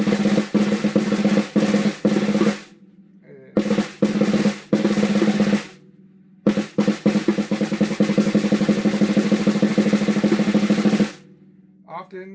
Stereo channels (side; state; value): both; identical; correlation 1.00